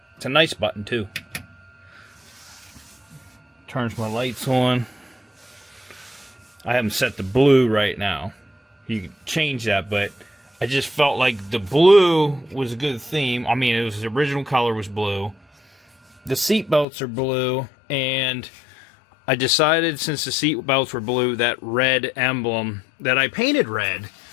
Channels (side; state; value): right; drops out; at 16.9 s